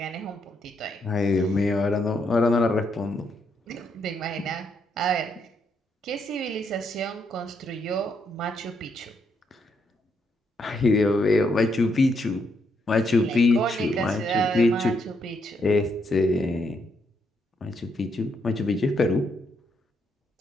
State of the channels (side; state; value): both; normal; correlation 0.76